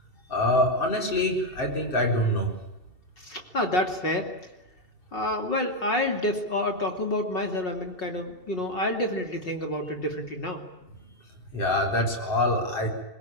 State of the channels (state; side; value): late; right; 2.7 ms